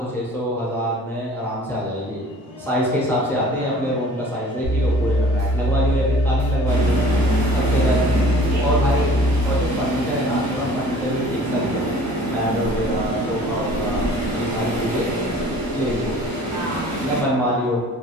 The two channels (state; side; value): normal; both; correlation 0.48